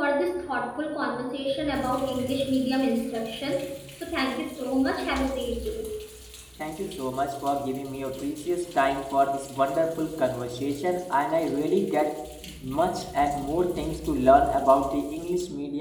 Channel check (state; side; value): identical; both; correlation 1.00